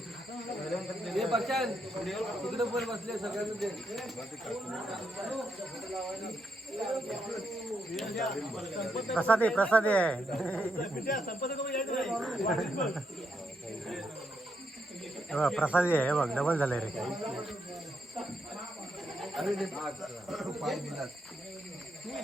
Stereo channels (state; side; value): normal; both; correlation 0.80